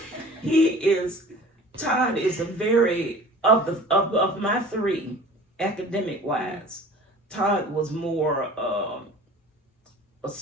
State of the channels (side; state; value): both; normal; correlation 0.43